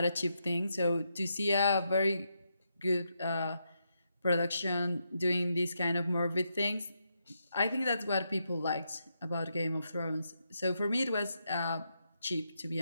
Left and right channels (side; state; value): both; inverted; correlation -0.82